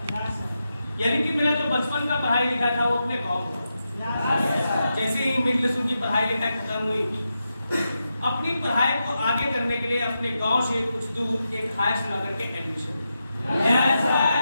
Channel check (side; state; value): both; inverted; correlation -0.88